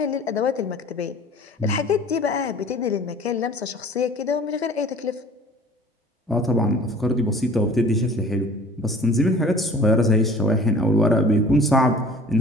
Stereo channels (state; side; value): normal; both; correlation 0.47